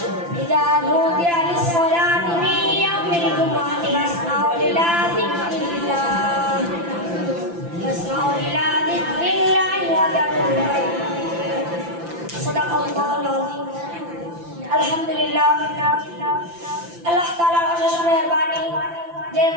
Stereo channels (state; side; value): late; left; 5.9 ms